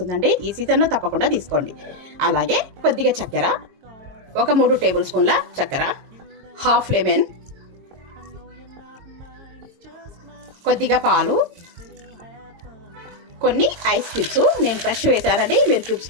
ఈ సీజన్లో తప్పకుండా తీసుకోండి. అలాగే కొద్దిగా చక్కెర, ఒక 3 టేబుల్ స్పూన్ల చక్కెర, హాఫ్ లెమన్, కొద్దిగా పాలు, కొన్ని ఐస్ క్యూబ్స్, నేను ఫ్రెష్ వేసానండి, మీరు క్యూబ్స్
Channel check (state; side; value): late; left; 22 ms